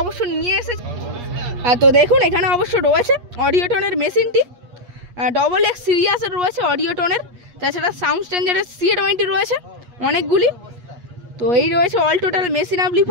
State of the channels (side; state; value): left; late; 8.4 ms